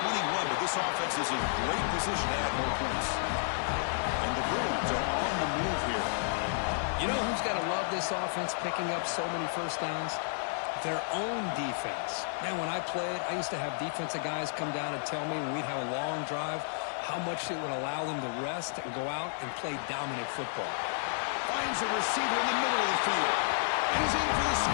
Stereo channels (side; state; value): right; silent; 57 dB below the other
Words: but this offense is in great position to add more points. And the Bruins are on the move here. You know who's got to love this offense picking up so many 1st downs? Their own defense. Man, when I played, I used to have defensive guys come down and tell me when we'd have a long drive how much it would allow them to rest and go out and play dominant football. Finds a receiver in the middle of the field. And he's in for the